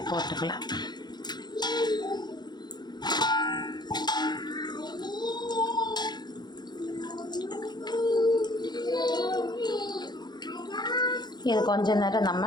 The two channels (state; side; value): late; right; 0.21 ms